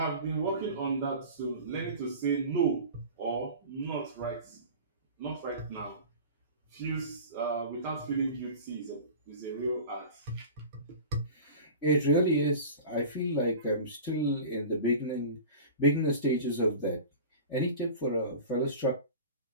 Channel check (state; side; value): inverted; both; correlation -0.36